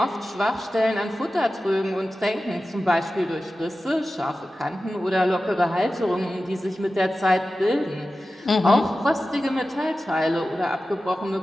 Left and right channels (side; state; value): both; normal; correlation 0.94